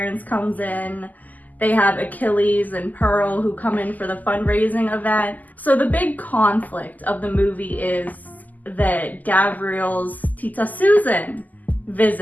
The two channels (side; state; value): right; late; 0.081 ms